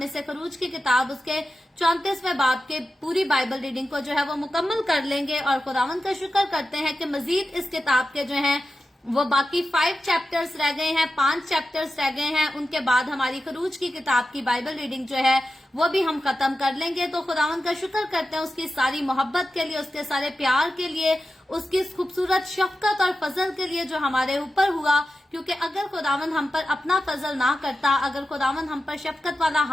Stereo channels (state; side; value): normal; both; correlation 0.92